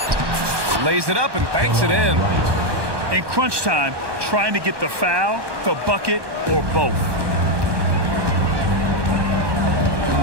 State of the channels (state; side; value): late; left; 1.2 ms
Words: Lays it up and banks it in. In crunch time, trying to get the foul, the bucket, or both.